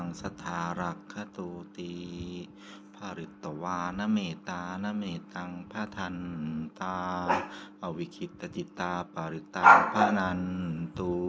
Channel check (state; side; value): identical; both; correlation 1.00